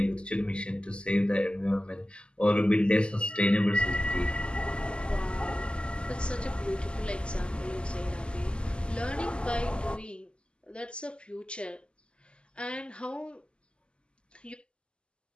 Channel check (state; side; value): late; right; 0.051 ms